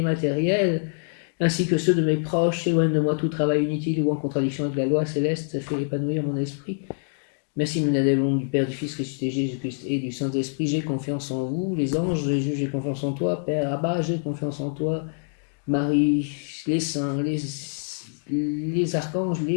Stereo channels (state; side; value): silent; right; digital silence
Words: matériels, ainsi que ceux de mes proches. Éloigne de moi tout travail inutile ou en contradiction avec la loi céleste. Fais épanouir mon esprit. Merci Ménadel, au nom du Père, du Fils, ressuscité Jésus-Christ et du Saint-Esprit. J'ai confiance en vous, les anges, Jésus, j'ai confiance en toi. Père Abba, j'ai confiance en toi. Marie, les saints, les archanges,